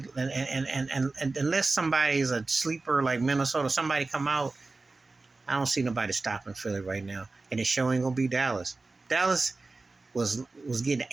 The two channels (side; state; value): left; quieter; 3.5 dB